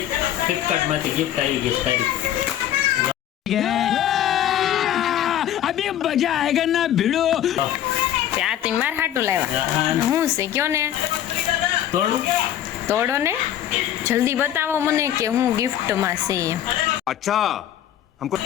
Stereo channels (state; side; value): quieter; right; 11.4 dB